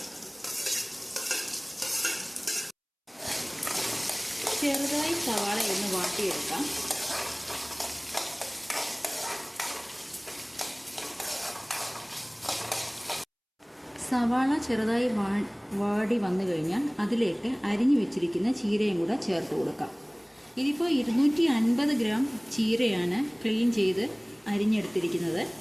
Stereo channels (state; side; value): identical; both; correlation 1.00